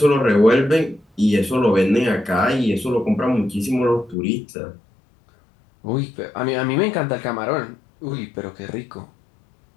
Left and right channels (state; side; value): drops out; right; at 4.2 s